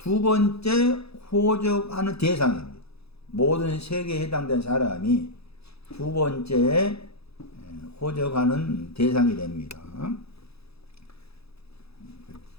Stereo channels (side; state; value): right; late; 0.78 ms